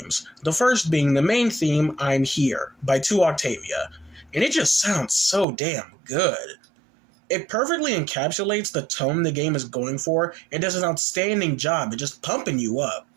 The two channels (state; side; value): drops out; left; at 5.5 s